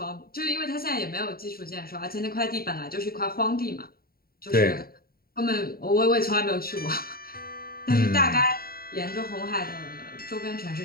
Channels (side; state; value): right; late; 0.43 ms